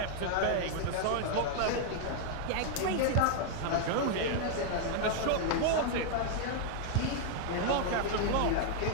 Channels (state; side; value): different; both; correlation 0.00